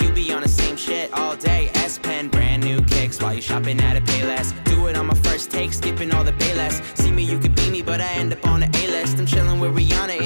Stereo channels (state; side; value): inverted; both; correlation -1.00